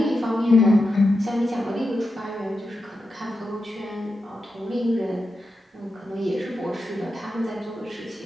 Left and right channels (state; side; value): normal; both; correlation 0.89